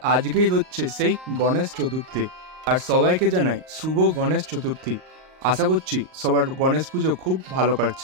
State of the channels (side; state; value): left; late; 38 ms